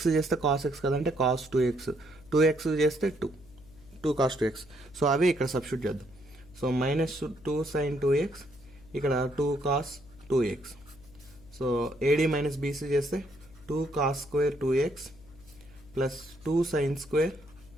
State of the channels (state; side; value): noise; left; hum, 23 dB below the sound